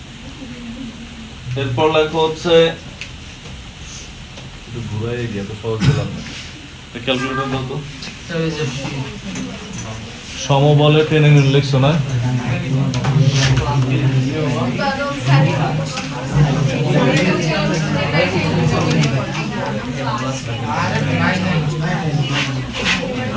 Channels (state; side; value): identical; both; correlation 1.00